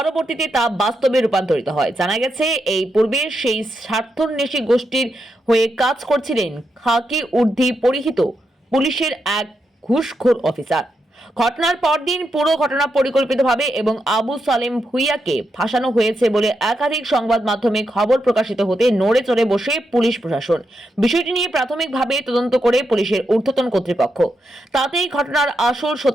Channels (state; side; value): normal; both; correlation 0.84